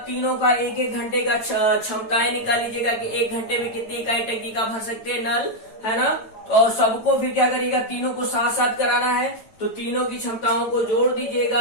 तीनों का एक एक घंटे का क्षमताएं निकाल लीजिएगा कि एक घंटे में कितनी इकाई टंकी का भर सकते हैं नल, है ना। तो सबको फिर क्या करिएगा, तीनों को साथ साथ कराना है। तो तीनों की क्षमताओं को जोड़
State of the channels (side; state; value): right; late; 9.1 ms